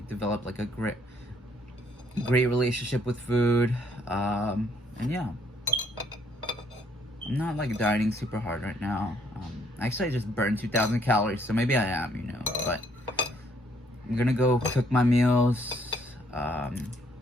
develop like a great relationship with food. And yeah, I'm not like dieting super hard right now. Actually, I just burned 2,000 calories, so maybe I am, you know. But I'm gonna go cook my meals.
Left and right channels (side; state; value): both; normal; correlation 0.67